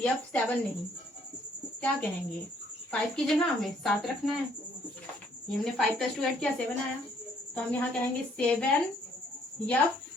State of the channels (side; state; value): both; normal; correlation 0.65